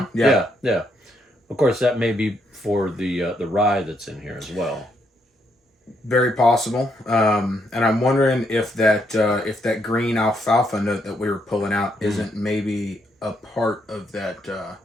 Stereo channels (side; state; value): both; normal; correlation 0.75